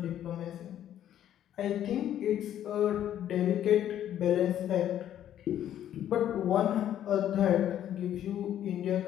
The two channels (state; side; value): quieter; right; 11.0 dB